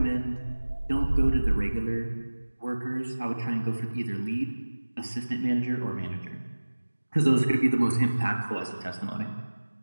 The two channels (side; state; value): both; inverted; correlation -1.00